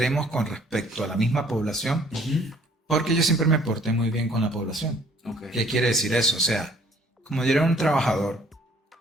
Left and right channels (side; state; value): both; normal; correlation 0.59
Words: con respecto a la misma población, Ujú. porque yo siempre me porté muy bien con la población. Ok. ¿Qué quiere decir eso? O sea, como yo era un trabajador